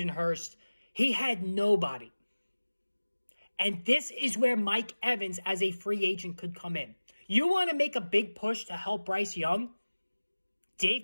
Hurst. He had nobody. And this is where Mike Evans as a free agent could come in. You want to make a big push to help Bryce Young? Dave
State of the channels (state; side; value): inverted; both; correlation -1.00